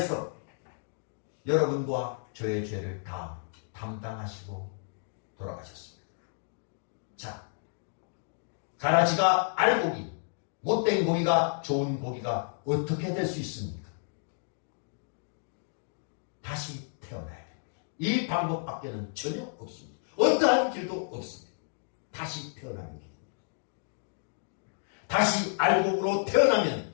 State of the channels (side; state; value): right; silent; digital silence